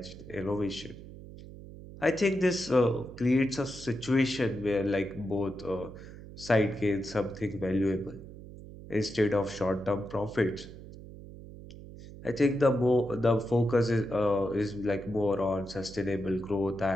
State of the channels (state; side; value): noise; right; hum, 15 dB below the sound